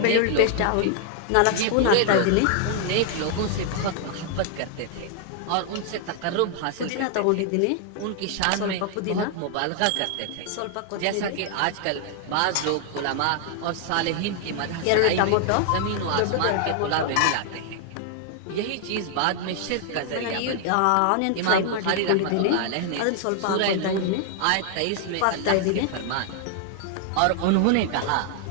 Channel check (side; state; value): both; different; correlation 0.00